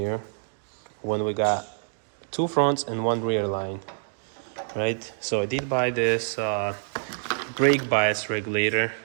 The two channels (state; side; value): silent; left; digital silence